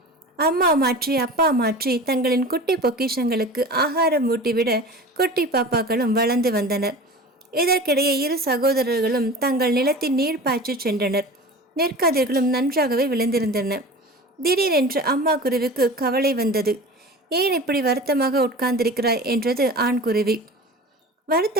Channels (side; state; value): both; normal; correlation 0.36